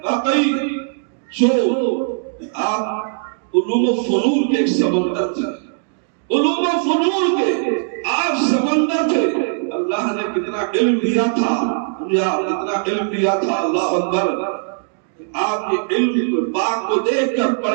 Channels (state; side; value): silent; left; digital silence